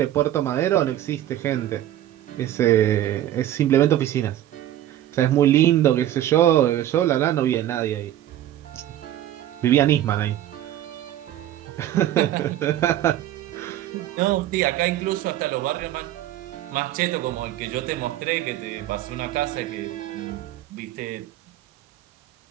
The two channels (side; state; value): left; quieter; 12.8 dB